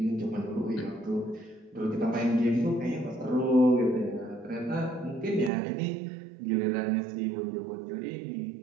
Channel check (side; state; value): left; drops out; at 5.5 s